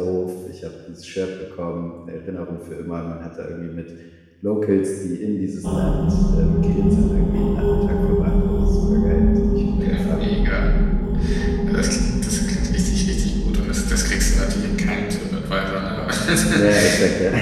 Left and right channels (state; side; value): identical; both; correlation 1.00